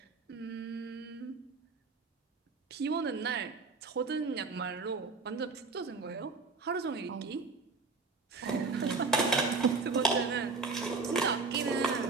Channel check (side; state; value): left; quieter; 4.1 dB